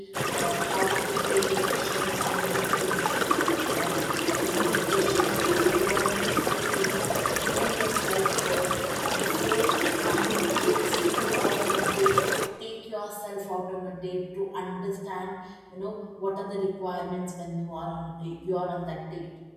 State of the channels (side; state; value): both; identical; correlation 1.00